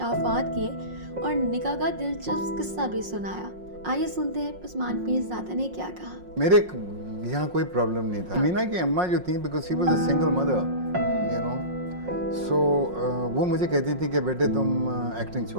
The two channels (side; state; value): left; late; 5.5 ms